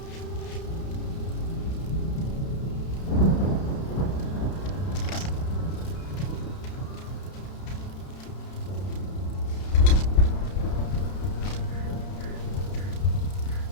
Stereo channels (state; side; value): late; right; 31 ms